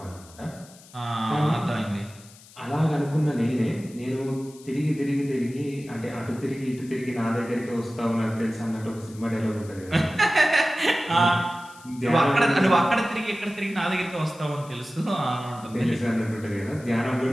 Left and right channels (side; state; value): left; noise; hiss, 22 dB below the sound